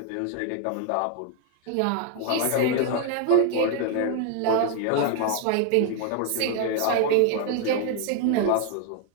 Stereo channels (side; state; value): both; different; correlation 0.00